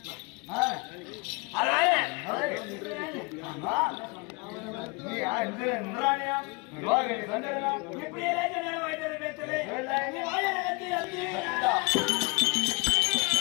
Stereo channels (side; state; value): right; quieter; 28.8 dB